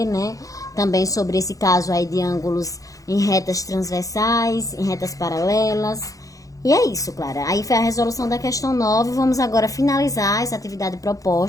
né? Também sobre esse caso aí de ângulos em retas transversais, em retas paralelas. E é isso, Clara. Aí foi a resolução da questão 9. Vamos agora finalizar essa atividade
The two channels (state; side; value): late; right; 0.17 ms